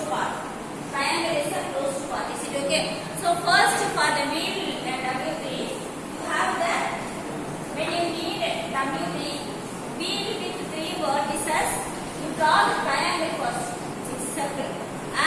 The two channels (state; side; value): identical; both; correlation 1.00